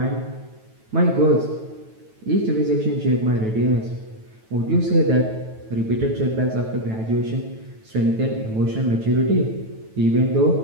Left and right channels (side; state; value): left; late; 9.1 ms